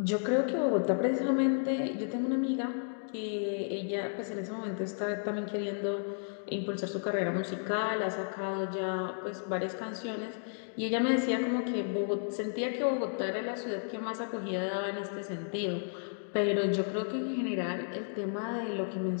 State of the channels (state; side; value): silent; right; digital silence